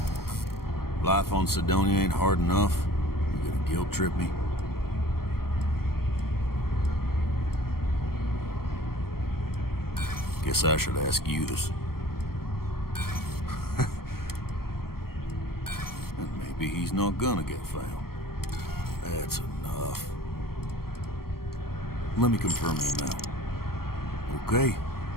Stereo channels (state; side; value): late; right; 0.94 ms